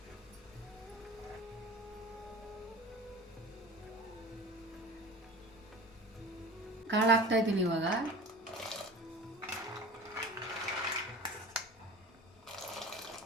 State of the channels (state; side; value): normal; both; correlation 0.36